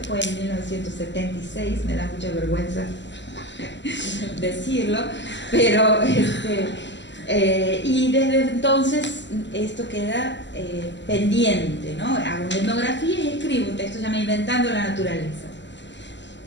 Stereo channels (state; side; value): late; right; 0.53 ms